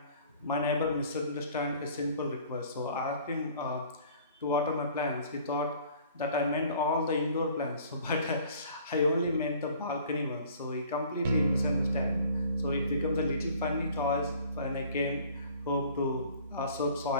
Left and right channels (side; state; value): both; inverted; correlation -0.52